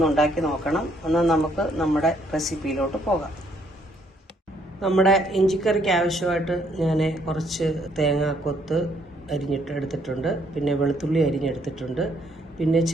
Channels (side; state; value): both; normal; correlation 0.68